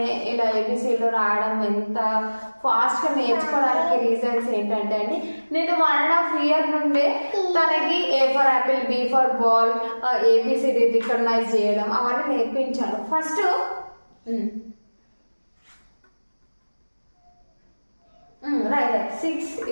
ఇలా ఏబిసిలు రాయడం ఎంత ఫాస్ట్గా నేర్చుకోవడానికి రీజన్స్ ఏంటంటే అండి, నేను 1.5 year నుండే తనకి A for apple, B for ball, ABCD recognize చేయడం అవన్నీ నేర్పించాను. ఫస్ట్ రైట్ 6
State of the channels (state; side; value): inverted; both; correlation -1.00